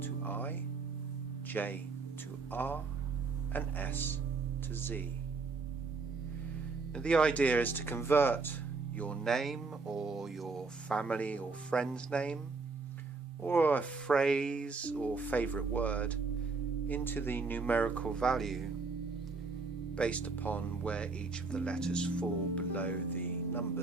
to I, J to R and S to Z. Now, the idea is to convert your name or your family or friend's name or a phrase or favourite word into the numerical value based upon where each of the letters fall below the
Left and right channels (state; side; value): quieter; left; 4.2 dB